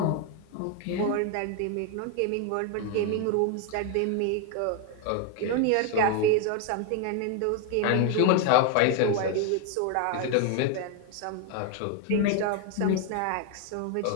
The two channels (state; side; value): different; both; correlation 0.01